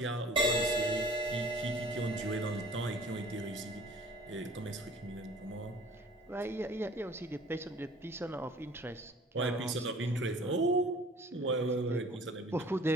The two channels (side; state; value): both; normal; correlation 0.50